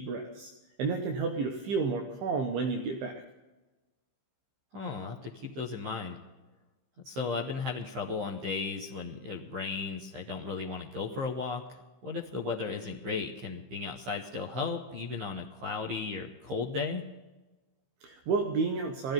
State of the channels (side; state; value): left; late; 15 ms